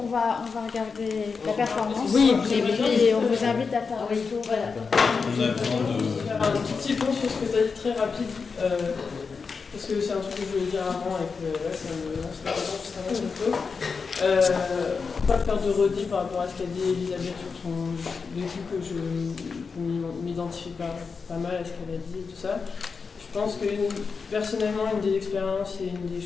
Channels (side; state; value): right; quieter; 5.1 dB